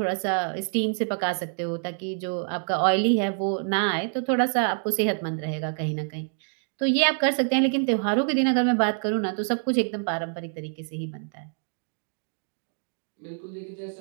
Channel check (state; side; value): silent; left; 61 dB below the other